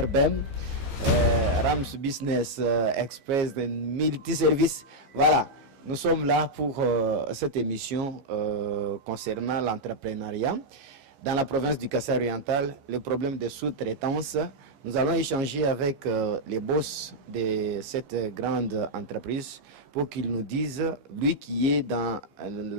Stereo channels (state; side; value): late; left; 15 ms